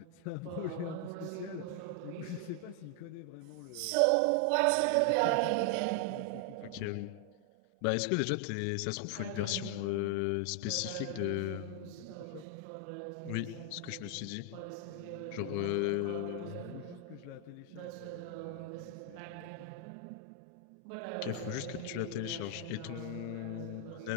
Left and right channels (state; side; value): different; both; correlation 0.00